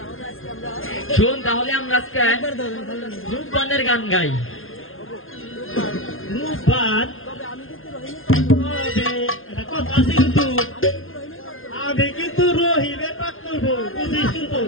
শোন তাহলে আমরা আজকে রূপবানের গান গাই। রূপবান কথা আছে কিন্তু আমি কিন্তু রহিমের পাক করবো, বুঝিস কিন্তু।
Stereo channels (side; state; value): right; late; 0.60 ms